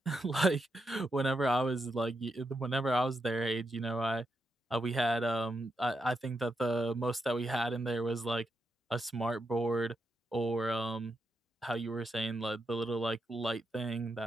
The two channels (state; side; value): normal; both; correlation 0.84